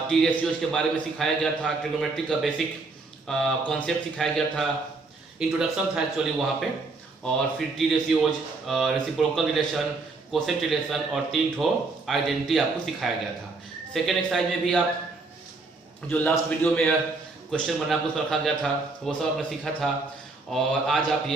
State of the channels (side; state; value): left; quieter; 3.7 dB